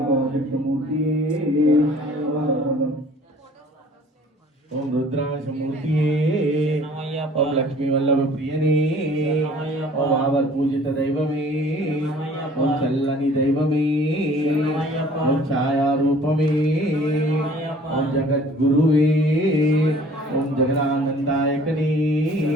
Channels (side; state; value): both; normal; correlation 0.52